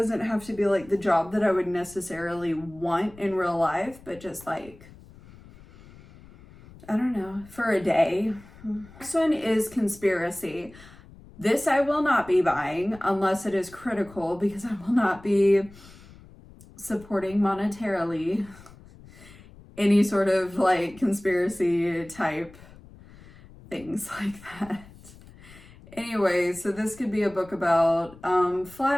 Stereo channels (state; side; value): noise; left; rumble, 21 dB below the sound